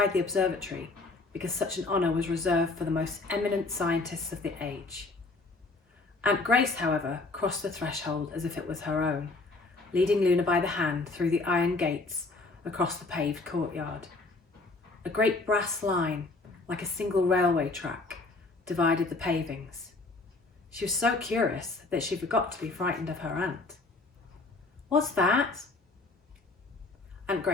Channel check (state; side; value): quieter; right; 3.5 dB